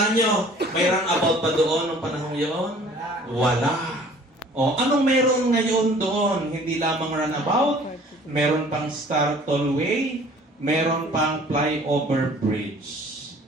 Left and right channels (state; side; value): normal; both; correlation 0.51